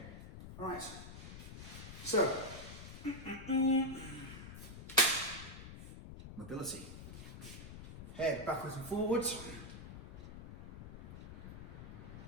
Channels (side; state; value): left; noise; rumble, 11 dB below the sound